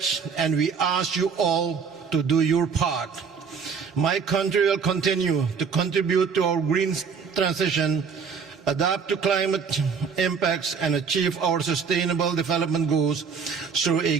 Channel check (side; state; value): left; quieter; 6.0 dB